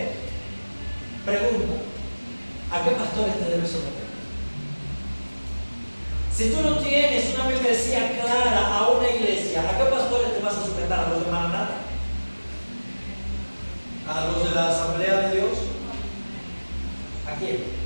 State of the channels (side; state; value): both; inverted; correlation -1.00